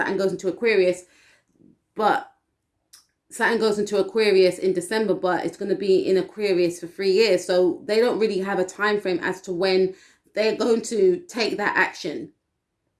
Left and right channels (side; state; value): both; identical; correlation 1.00